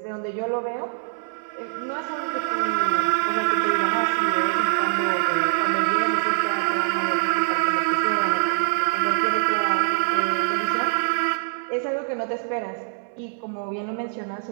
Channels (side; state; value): left; silent; 63 dB below the other